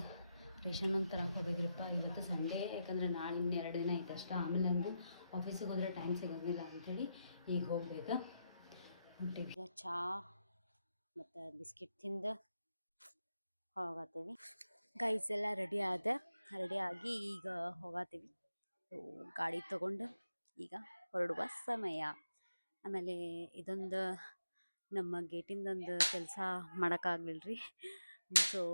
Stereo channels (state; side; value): inverted; both; correlation -0.85